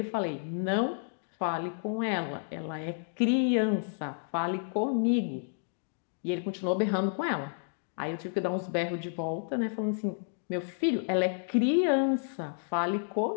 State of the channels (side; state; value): right; silent; digital silence